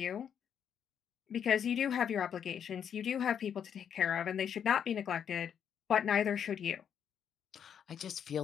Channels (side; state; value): right; quieter; 8.3 dB